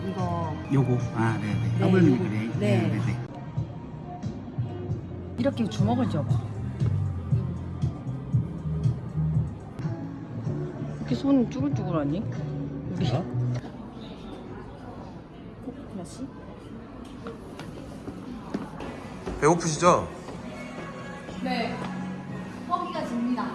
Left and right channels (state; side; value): identical; both; correlation 1.00